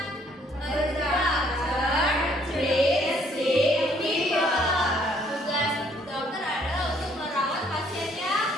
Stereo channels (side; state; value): both; normal; correlation 0.64